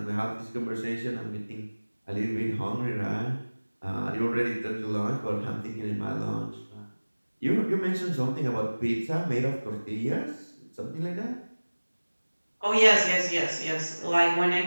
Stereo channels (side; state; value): both; inverted; correlation -1.00